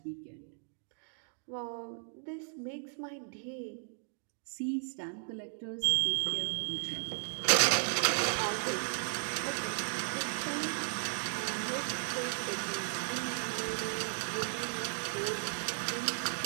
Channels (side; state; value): left; silent; digital silence